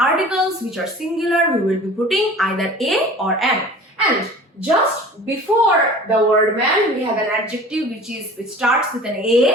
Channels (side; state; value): both; normal; correlation 0.43